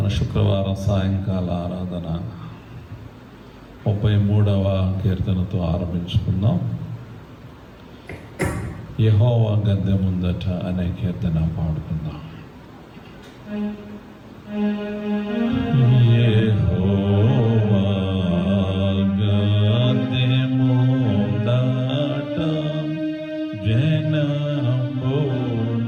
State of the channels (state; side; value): identical; both; correlation 1.00